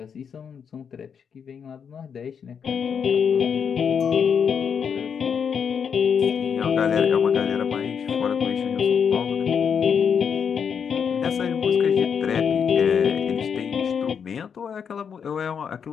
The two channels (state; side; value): quieter; right; 7.0 dB